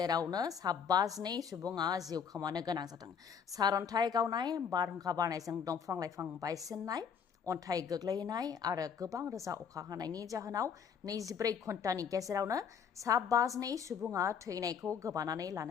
52 सुबुङा जिउ खोमानो गोनां जादों। सारअन्थाइ गावनाय, बारहुंखा बारनायजों दंफां लाइफां बायसिननाय, अन्थाइ गोग्लैनाय आरो गोबां रोजा अखा हानायनि जाहोनाव 24 घन्टानि गेजेरावनो 52 सुबुङा थैनायखौ गोबानानै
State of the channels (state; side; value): quieter; right; 7.1 dB